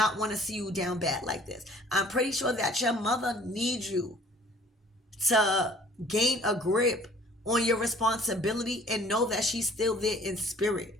want to see you down bad like this. I'm pretty sure that your mother needs you to gain a grip on your responsibility and know that she's still there in spirit.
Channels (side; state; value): both; normal; correlation 0.54